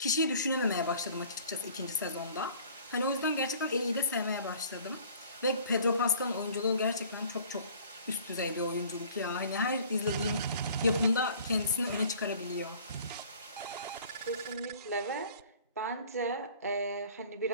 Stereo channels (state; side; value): inverted; both; correlation -0.51